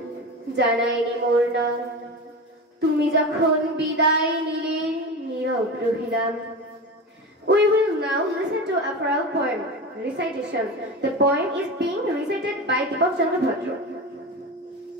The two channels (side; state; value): both; normal; correlation 0.25